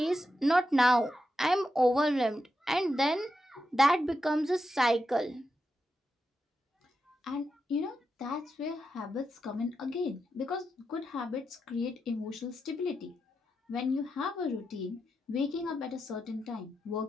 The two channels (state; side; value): normal; both; correlation 0.87